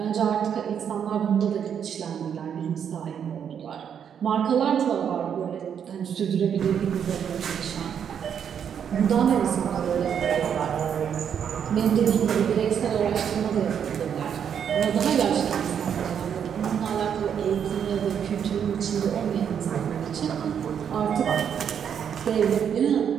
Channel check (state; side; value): quieter; left; 8.1 dB